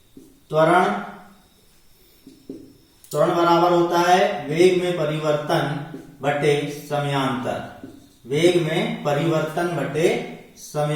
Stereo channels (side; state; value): both; identical; correlation 1.00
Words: त्वरण बराबर होता है वेग में परिवर्तन बटे समयांतर। वेग में परिवर्तन बटे